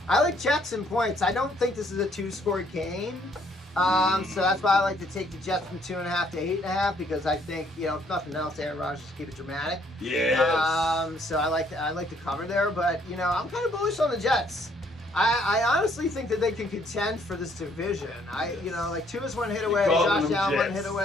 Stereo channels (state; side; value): normal; both; correlation 0.66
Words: I like Jets and points. I don't think this is a 2-score game. So that's why I like to take the Jets from 2.5 to 8.5, because I think, if nothing else, Aaron Rodgers just keep it dramatic. Yes. So I like to cover there, but I'm kind of bullish on the Jets. I honestly think that they can contend for this division. Tua's one hit away, Josh Allen one hit